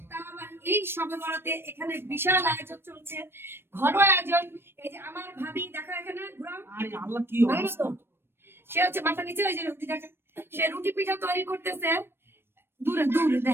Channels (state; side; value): late; left; 0.11 ms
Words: তাও আবার এই সবে বরাতে এখানে বিশাল আয়োজন চলছে, ঘরোয়া আয়োজন। এই যে আমার ভাবি, দেখো এখানে ঘুরাও। আরে আল্লাহ কি ভালো অবস্থা! তো? সে হচ্ছে মাথা নিচে, ওই যে রুটি দেখা, সে রুটি পিঠা তৈরি করতেছে। দূরে দূরে